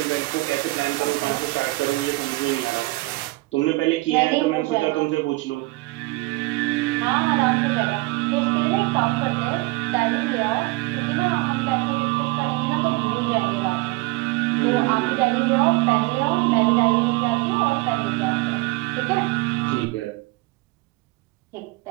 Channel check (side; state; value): left; quieter; 22.3 dB